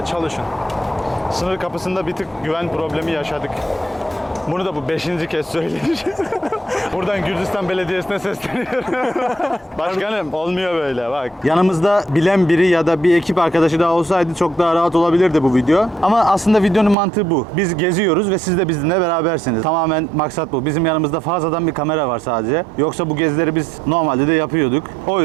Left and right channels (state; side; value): drops out; left; at 16.9 s